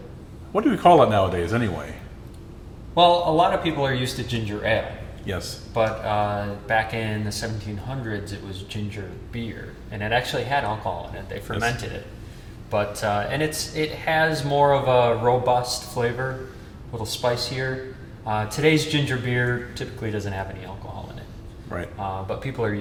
What do we call it nowadays anyway? Well, a lot of people are used to ginger ale. Yes. But back in the 1700s, it was ginger beer. And it actually had alcohol in it. They fermented it. But and it has more of a robust flavor, a little spicier. Today's ginger beer typically doesn't have any alcohol in it. Right. But people are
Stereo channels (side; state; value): both; identical; correlation 1.00